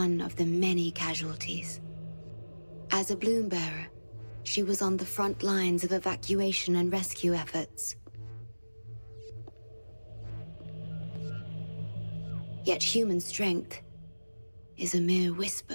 of the many casualties. As a bloom bearer, she was on the front lines of evacuation and rescue efforts. Yet human strength is a mere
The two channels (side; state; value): both; inverted; correlation -1.00